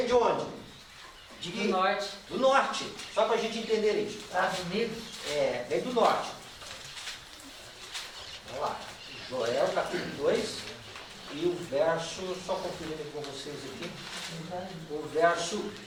de onde? Do norte. Do norte. Só para a gente entender isso. Estados Unidos. É, vem do norte. Vamos lá. Joel, capítulo 2, e o verso, só conferindo com vocês aqui, o verso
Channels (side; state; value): both; identical; correlation 1.00